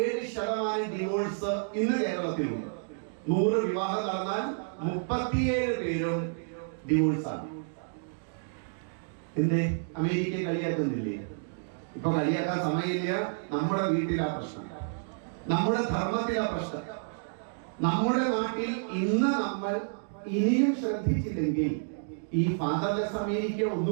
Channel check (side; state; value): left; silent; digital silence